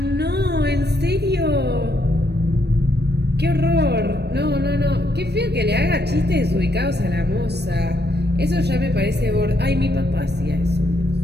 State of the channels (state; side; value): late; left; 0.48 ms